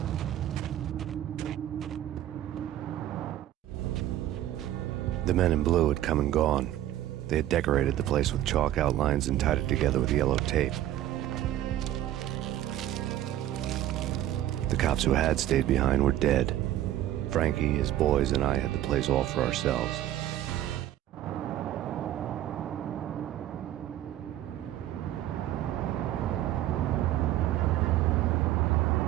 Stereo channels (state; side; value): quieter; left; 13.1 dB